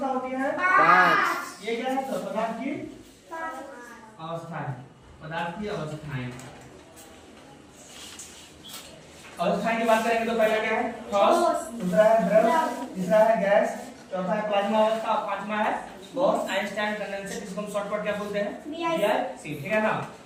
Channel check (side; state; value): both; identical; correlation 1.00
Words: होती है? 5। ये क्या है? तो पदार्थ की अवस्थाएं, पदार्थ की अवस्थाएं। अवस्थाएं की बात करेंगे तो पहला क्या है? ठोस, दूसरा है द्रव, तीसरा है गैस, चौथा है प्लाज्मा अवस्था, पांचवा है बॉस आइंस्टाइन कंडेंसर, जिसको हम शॉर्टकट क्या बोलते हैं? BIC। ठीक है ना।